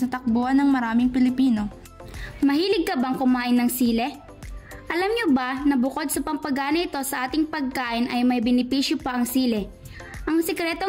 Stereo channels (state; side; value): identical; both; correlation 1.00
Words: na takbuhan ng maraming Pilipino. Mahilig ka bang kumain ng sile? Alam niyo ba na bukod sa pampagana ito sa ating pagkain ay may benepisyo pa ang sile? Ang